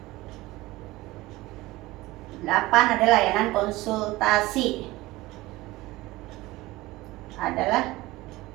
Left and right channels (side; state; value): left; quieter; 18.7 dB